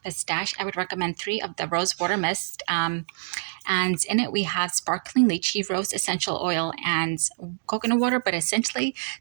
pistache, I would recommend 3 of the rose water mist. And in it, we have sparkling lychee, rose essential oil, and coconut water. But essentially,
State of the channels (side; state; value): left; silent; digital silence